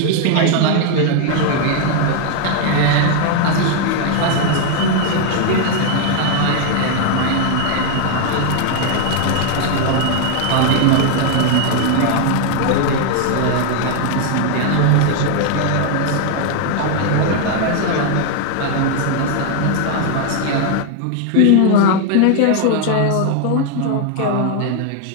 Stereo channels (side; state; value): both; different; correlation 0.00